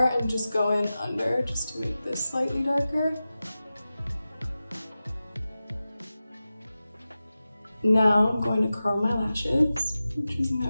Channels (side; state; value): both; inverted; correlation -0.94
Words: and just go in under just to make this slightly darker. Now I'm going to curl my lashes, which is